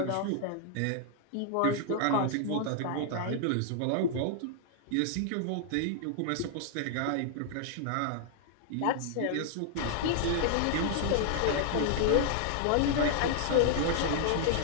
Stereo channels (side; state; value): both; different; correlation -0.01